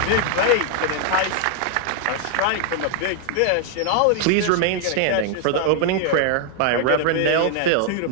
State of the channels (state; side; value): different; both; correlation 0.00